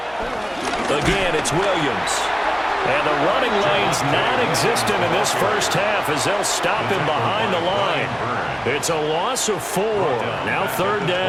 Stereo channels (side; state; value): right; noise; hum, 24 dB below the sound